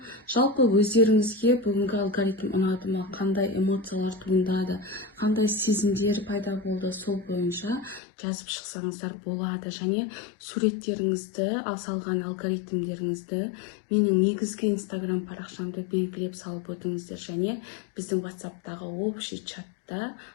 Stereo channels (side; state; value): right; drops out; at 8.0 s